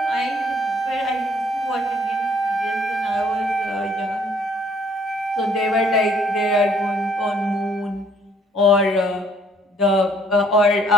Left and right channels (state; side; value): normal; both; correlation 0.63